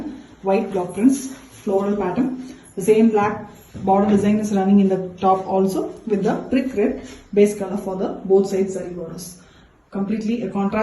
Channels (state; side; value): identical; both; correlation 1.00